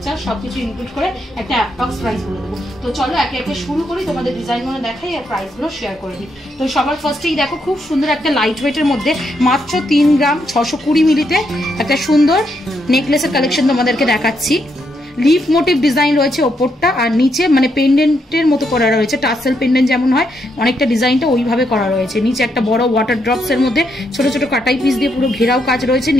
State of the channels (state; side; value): normal; both; correlation 0.78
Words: charge সবকিছু ইনক্লুড করে একটা অ্যাপ্রক্স প্রাইস বলে দেবো। তো চলো একে একে শুরু করি, তোমাদের ডিজাইনগুলো দেখাই আর প্রাইসগুলো শেয়ার করে দিই। তো সবার ফার্স্টেই দেখো খুব সুন্দর একটা লাইট ওয়েটের মধ্যে মাত্র 3 গ্রাম 620 মিলিতে একটা সুন্দর নেকলেসের কালেকশন তোমাদেরকে দেখাচ্ছি। লিফ মোটিভ ডিজাইন রয়েছে ওপরটা, আর নিচে মানে পেন্ডেন্টের মতো করা রয়েছে। টাসেল পেন্ডেন্ট যেমন হয় অনেকটা ডিজাইনটা ওইভাবে করা রয়েছে। নিচে একটা বড় ওয়াটার ড্রপস এর মধ্যে ছোট ছোট কাটাই পিস দিয়ে পুরো ঘেরাও কাজ রয়েছে।